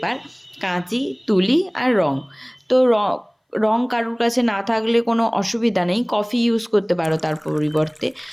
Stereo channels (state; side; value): identical; both; correlation 1.00